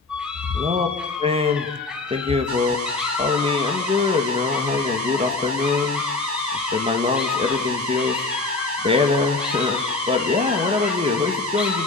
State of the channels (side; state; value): right; quieter; 3.5 dB